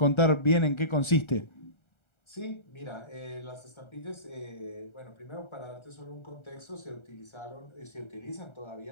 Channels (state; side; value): late; right; 1.3 ms